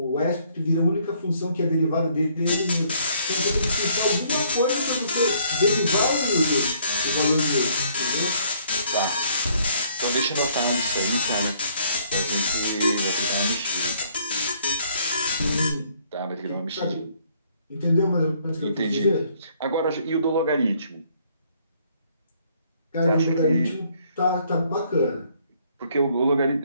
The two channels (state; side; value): inverted; both; correlation -0.64